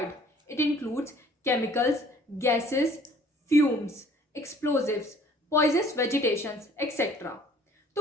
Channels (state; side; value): normal; both; correlation 0.55